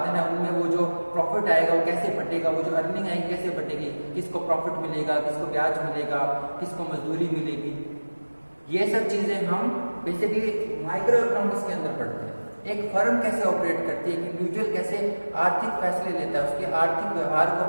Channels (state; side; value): inverted; both; correlation -1.00